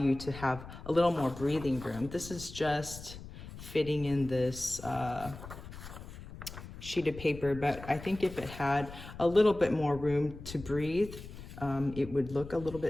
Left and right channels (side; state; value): left; noise; rumble, 13 dB below the sound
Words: to have a little more breathing room. This is just fitting in this sheet of paper, but I think if it had a little bit more room to breathe, it would look a little